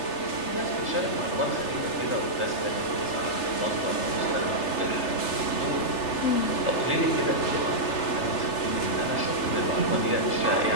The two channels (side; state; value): right; late; 3.3 ms